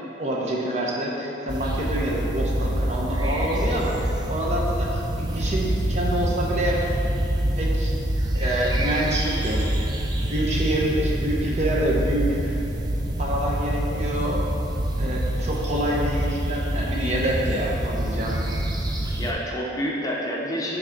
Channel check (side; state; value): both; normal; correlation 0.67